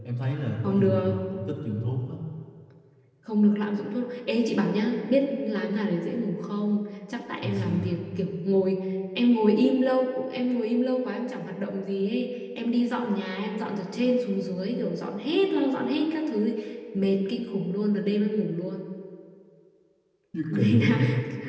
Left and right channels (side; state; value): both; identical; correlation 1.00